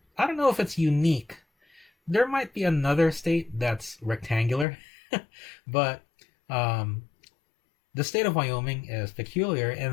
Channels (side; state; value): right; drops out; at 4.7 s